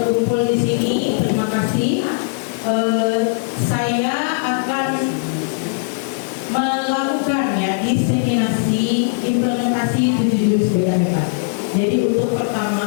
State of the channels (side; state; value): right; silent; digital silence